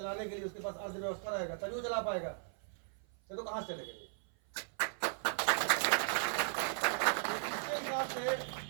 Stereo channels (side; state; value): left; silent; 53 dB below the other